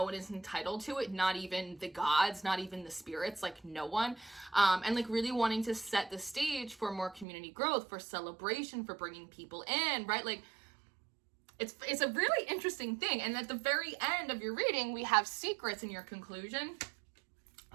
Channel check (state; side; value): drops out; left; at 7.2 s